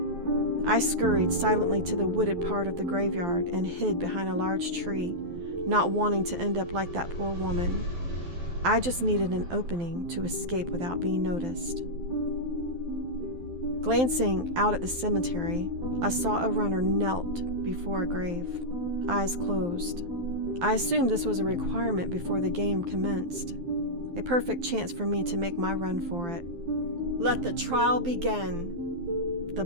I scurried silently to the wooded part of the graveyard and hid behind a large tree, not wanting to end up like that poor woman. I just needed an opening to escape without being noticed. Glancing out at the cemetery, I saw a runner knelt before a grave, eyes closed. I assumed this was a requirement before the game commenced, a perfect chance for me to make my run for it. Let the trial begin! The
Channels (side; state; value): left; late; 12 ms